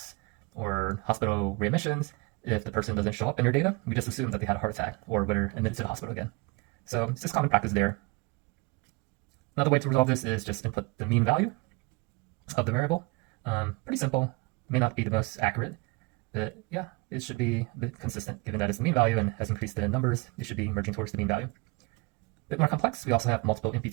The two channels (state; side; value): quieter; left; 26.3 dB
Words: or hospital readmissions, if the person doesn't show up in your data, we just assume that they had a heart attack or were admitted to the hospital again. So it's just common practice there. Another way to resolve this is just input the mean value of the variable. Pretty simple, may not be the most accurate, but yeah, it should be a bit consistent given that it's the mean value and has increased in numbers, it should be merging towards the mean value. A bit more complex, we also have multiple